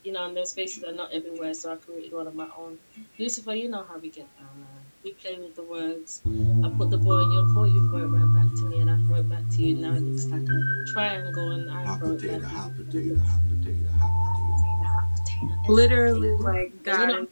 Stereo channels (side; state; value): both; inverted; correlation -1.00